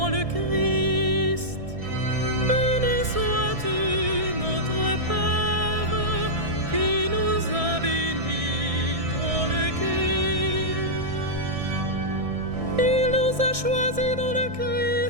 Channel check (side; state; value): left; late; 1.6 ms